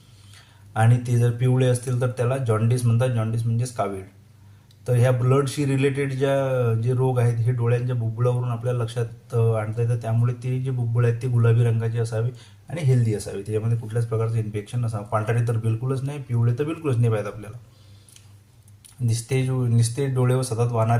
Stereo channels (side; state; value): both; identical; correlation 1.00